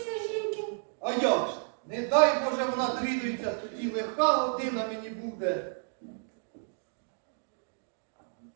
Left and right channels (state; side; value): silent; left; digital silence